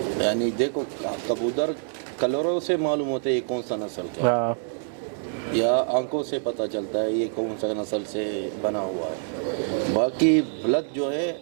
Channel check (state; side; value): silent; left; 61 dB below the other